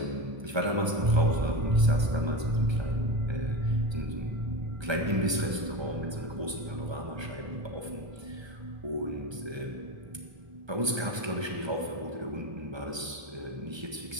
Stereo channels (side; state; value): left; late; 1.3 ms